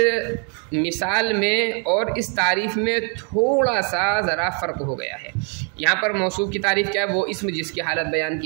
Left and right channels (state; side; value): quieter; left; 38.6 dB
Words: मिसाल में और इस तारीफ़ में थोड़ा सा ज़रा फ़र्क हो गया है। यहाँ पर मौसूफ़ की तारीफ़ क्या है? वो इस्म जिसकी हालत बयान